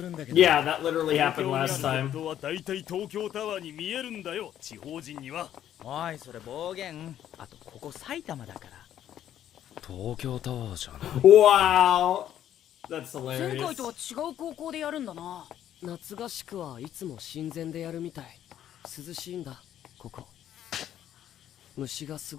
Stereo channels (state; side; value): quieter; right; 11.0 dB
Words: Yeah, that literally happened last time. おいそれ暴言あとここ埼玉だから東京タワーじゃん Wow! That's 前 hilarious. 回とは違う高校でやるんだな。夏合宿はいつも親善でやるみたい。涼しいんだここ。虫がす